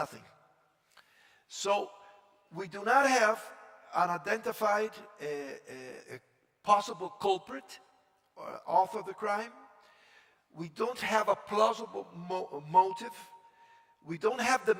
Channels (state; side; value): identical; both; correlation 1.00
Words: So we do not have an identified possible culprit author of the crime. We don't have a plausible motive. We don't have the